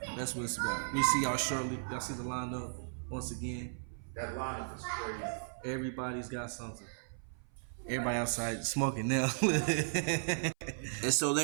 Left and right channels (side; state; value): left; silent; 54 dB below the other